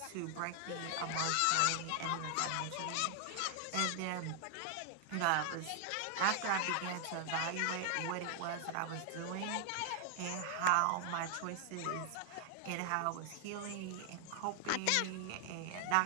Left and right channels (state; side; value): different; both; correlation 0.00